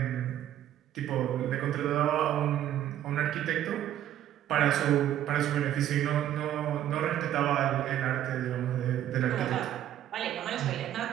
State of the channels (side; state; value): left; quieter; 11.8 dB